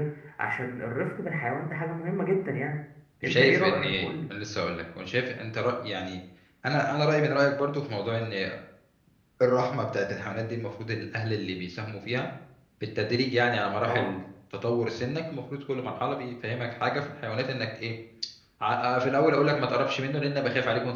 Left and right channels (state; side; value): identical; both; correlation 1.00